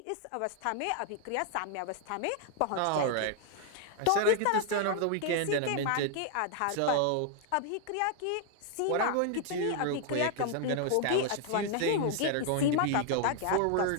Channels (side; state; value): both; different; correlation 0.00